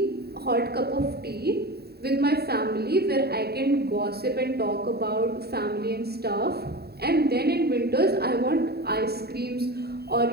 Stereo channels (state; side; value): late; left; 0.46 ms